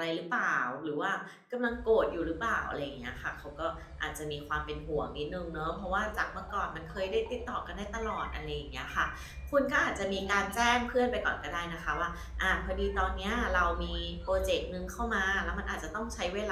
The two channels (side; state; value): both; identical; correlation 1.00